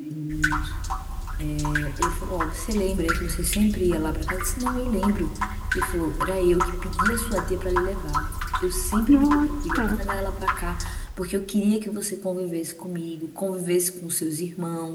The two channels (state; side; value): identical; both; correlation 1.00